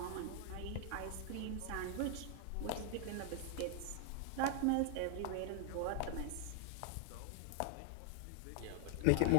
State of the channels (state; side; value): different; both; correlation 0.00